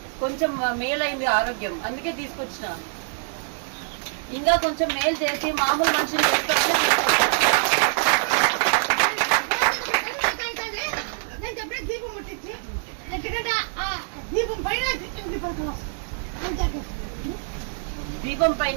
కొంచెం మేలైంది ఆరోగ్యం, అందుకే తీసుకొచ్చిన. ఇంకా కొంచెం మేలు చేసి మామూలు మనుషులు దీపం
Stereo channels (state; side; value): silent; left; digital silence